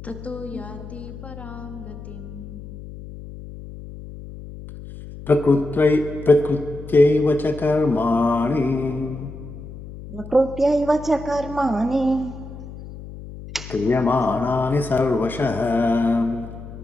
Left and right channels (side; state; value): left; noise; hum, 13 dB below the sound